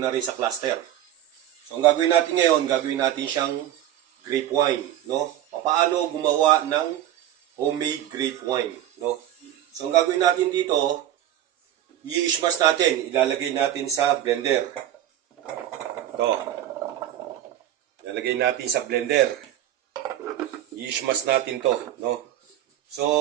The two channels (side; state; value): left; quieter; 12.0 dB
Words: na rin sa cluster. So ang gagawin natin ngayon, gagawin natin siyang grape wine, no? Paano gumawa ng homemade grape wine, no? So ang gagawin natin dito, i-smash natin, ilalagay natin sa blender. Ito. Ilalagay natin sa blender. I-smash natin to, no? So